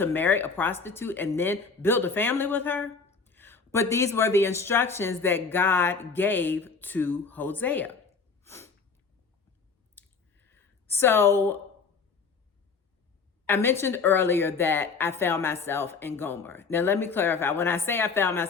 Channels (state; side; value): quieter; right; 5.0 dB